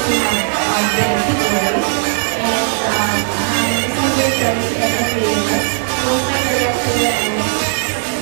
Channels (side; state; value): left; silent; 69 dB below the other